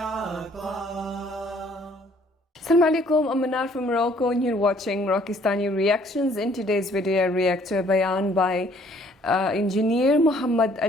alaikum, I'm Manar from Morocco and you're watching Rockistani Reactions. In today's video, I react to a bayan by Engineer Muhammad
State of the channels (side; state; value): both; normal; correlation 0.60